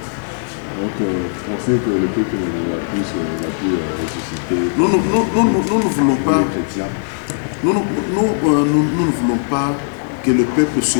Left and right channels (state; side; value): silent; right; digital silence